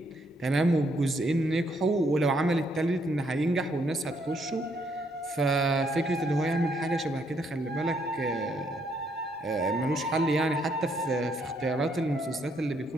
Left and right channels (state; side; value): normal; both; correlation 0.72